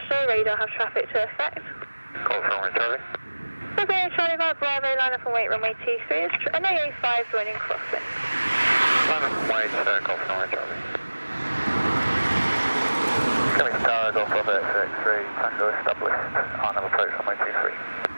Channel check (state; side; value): inverted; both; correlation -1.00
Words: radar have traffic to effect. Golf Romeo Charlie. Golf Romeo Charlie via Bravo, line up and wait runway 23, an AA5 joining crosswind. Line up and wait, Golf Romeo Charlie. Coming to Tower, Golf Bravo X-ray, Tango established, on approach runway 23.